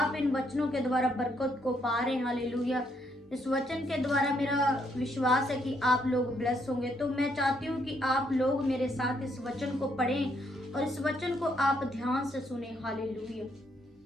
इन वचनों के द्वारा बरकत को पा रहे हैं। हालेलुया। इस वचन के द्वारा मेरा विश्वास है कि आप लोग ब्लेस होंगे। तो मैं चाहती हूँ कि आप लोग मेरे साथ इस वचन को पढ़ें और इस वचन को आप ध्यान से सुने। Hallelujah.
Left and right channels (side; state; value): both; normal; correlation 0.73